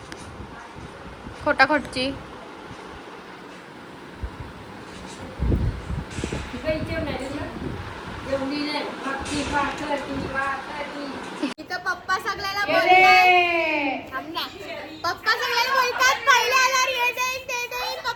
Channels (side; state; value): both; identical; correlation 1.00